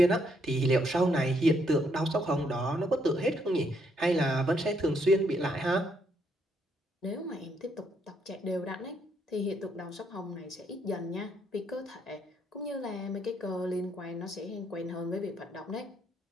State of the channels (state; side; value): normal; both; correlation 0.73